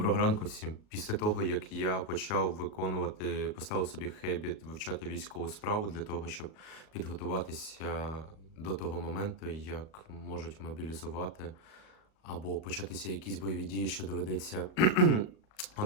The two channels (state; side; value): late; right; 38 ms